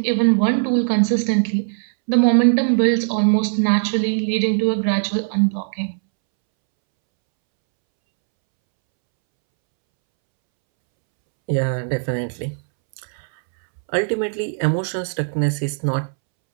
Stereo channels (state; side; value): silent; left; 66 dB below the other